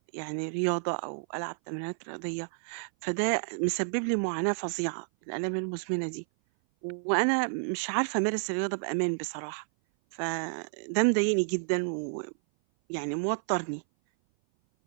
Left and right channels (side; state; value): left; silent; 56 dB below the other